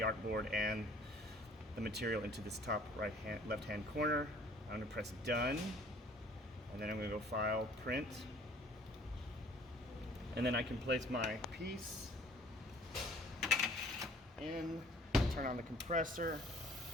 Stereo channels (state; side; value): normal; both; correlation 0.55